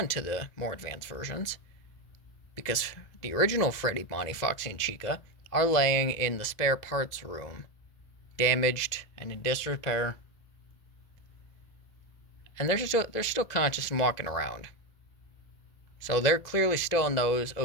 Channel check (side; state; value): right; late; 2.0 ms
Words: to the more advanced versions. Because the original Freddy, Bonnie, Foxy, and Chica are laying in the spare parts room, damaged and in disrepair. And they're still conscious and walking around. So they're clearly still in those